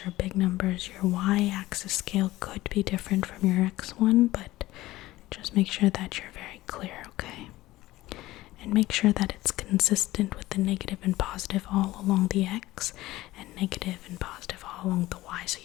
or big numbers, your y-axis scale could be different from your x one, but just make sure that you're very clear, okay? And make sure that it's consistent with the negative and positive all along the x and negative and positive all along the y, so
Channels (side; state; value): right; quieter; 17.3 dB